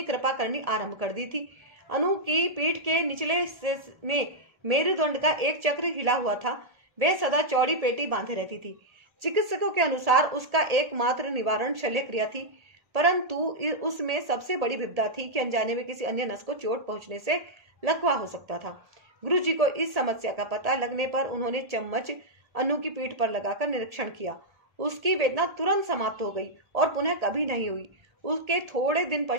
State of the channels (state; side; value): late; left; 1.7 ms